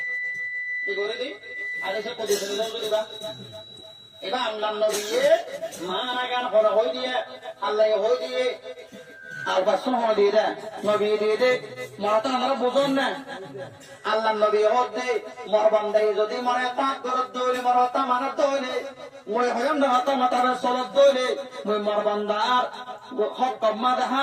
কি করে দিই হাদিসে কুদসি দিবা এবার আল্লাহ নবী মানা গান হলো হই দিয়ে আল্লাহ হই দিয়ে আর বাসন হলো দিয়ে দে নবী দিয়ে দে মরা তো আমরা বুঝুন না আল্লাহ নবী হতে মোর বান্দা যদি মরা তাত গরব ধরে মরা তা মানা ধরে মই হয়ম না হাতা মাতারে সলত দইলে মই মোর বান্দার হক কম্মা দেখা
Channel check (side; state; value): both; identical; correlation 1.00